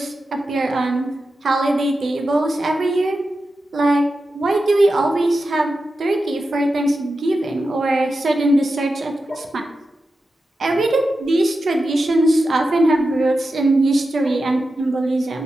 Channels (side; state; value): both; normal; correlation 0.91